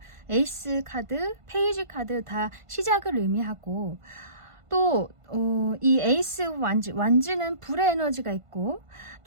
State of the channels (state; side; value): late; left; 1.5 ms